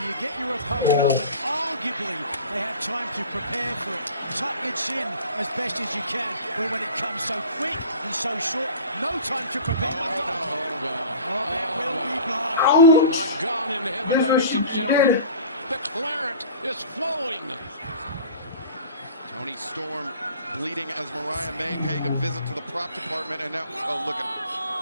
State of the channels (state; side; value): inverted; both; correlation -0.41